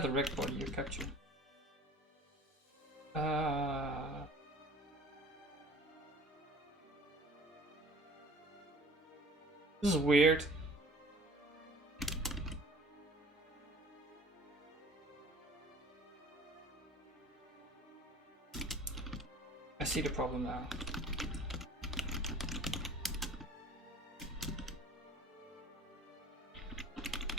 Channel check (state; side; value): normal; both; correlation 0.47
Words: a reg body, you capture. This is weird. I see the problem now.